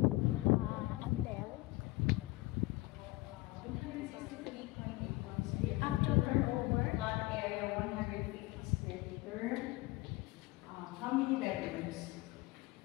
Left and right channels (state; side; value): quieter; right; 20.5 dB